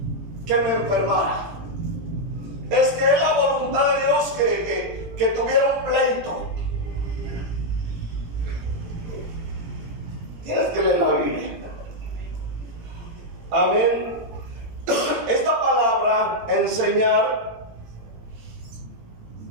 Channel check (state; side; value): late; left; 18 ms